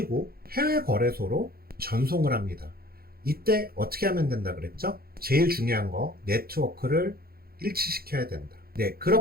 해외 거래소로 전송을 합니다. 이때 어떻게 하면 된다 그랬죠? 제일 중요한 거, 네트워크를 일치시켜야 된다.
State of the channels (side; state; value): left; late; 0.44 ms